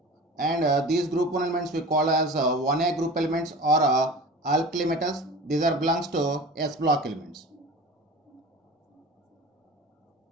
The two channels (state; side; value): normal; both; correlation 0.37